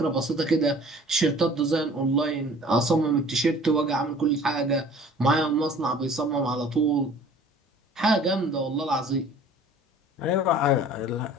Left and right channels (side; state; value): both; normal; correlation 0.49